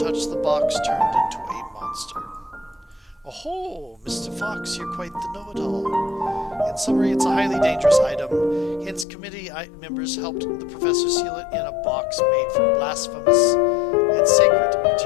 touched the box turned into a monster. Oh, Mr. Fox, you're quite the know-it-all. In summary, it's a highly dangerous item. Hence, committee members helped the professor seal it in a box made from blasphemous and sacred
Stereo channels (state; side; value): drops out; right; at 9.1 s